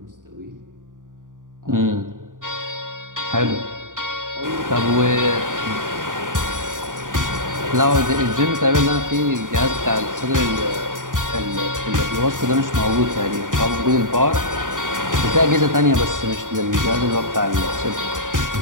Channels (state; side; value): late; left; 0.88 ms